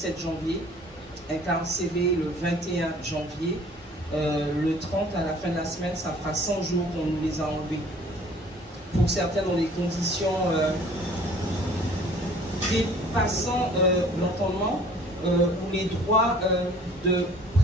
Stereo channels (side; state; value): both; normal; correlation 0.52